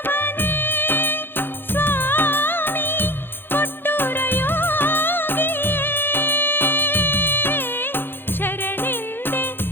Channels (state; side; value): late; right; 0.10 ms